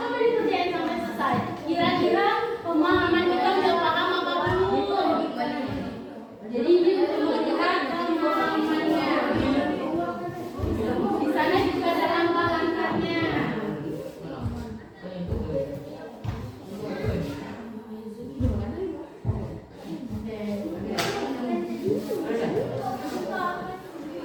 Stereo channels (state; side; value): identical; both; correlation 1.00